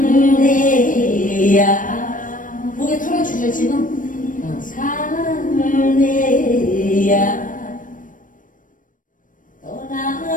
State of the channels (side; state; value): right; late; 0.38 ms